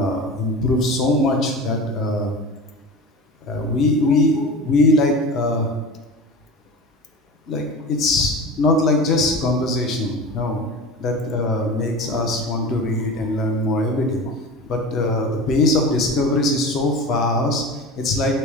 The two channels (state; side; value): normal; both; correlation 0.32